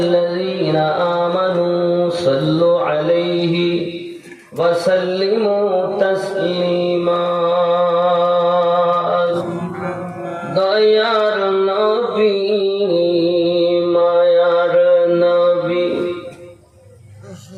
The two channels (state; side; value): identical; both; correlation 1.00